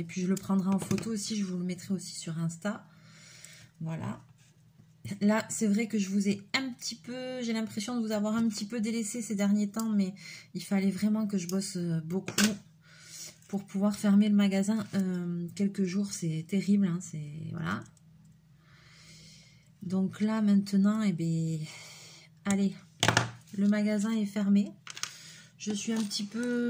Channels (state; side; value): identical; both; correlation 1.00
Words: puis je le prendrai en photo aussi. Je vous le mettrai aussi sur Insta. Voilà. Là, c'est vrai que je vous ai un petit peu... J'ai l'impression de vous avoir un petit peu délaissé ces derniers temps. Mais il fallait vraiment que je bosse beaucoup pour pouvoir fermer le magasin quelques jours. C'est terrible. Hein, voilà. Donc là, maintenant, eh bien, allez, le magasin est fermé. Je suis un petit